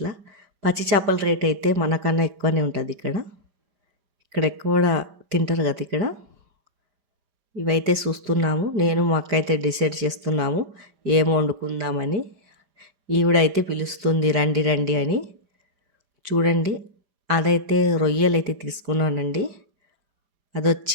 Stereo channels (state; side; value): late; left; 5.0 ms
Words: పచ్చి చేపల రేట్ అయితే మనకన్నా ఎక్కువనే ఉంటుంది ఇక్కడ ఎక్కువ తింటారు కదా ఇక్కడ. ఇవైతే చూస్తున్నాము. నేను మా అక్క అయితే డిసైడ్ చేస్తున్నాము ఏం వండుకుందామని. ఈవిడైతే పిలుస్తుంది రండి రండి అని. చూడండి అదైతే రొయ్యలు అయితే తీసుకున్నానండి.